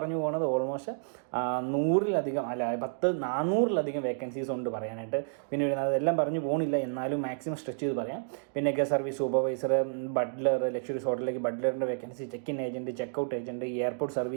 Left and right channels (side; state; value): left; silent; digital silence